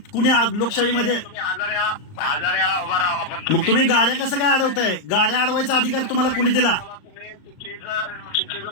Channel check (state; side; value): late; right; 38 ms